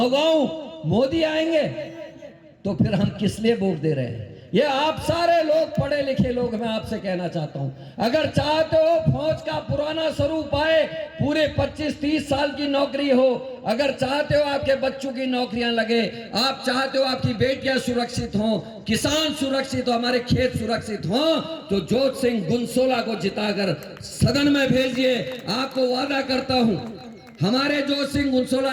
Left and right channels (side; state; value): both; identical; correlation 1.00